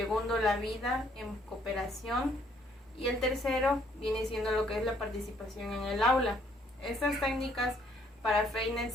la vida en cooperación y el tercero viene siendo lo que es la participación en el aula. Estas técnicas para Freire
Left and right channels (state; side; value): normal; both; correlation 0.66